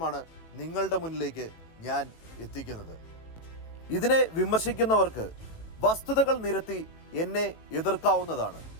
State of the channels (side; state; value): right; late; 18 ms